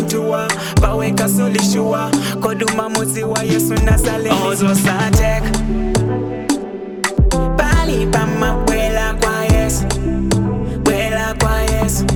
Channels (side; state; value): both; identical; correlation 1.00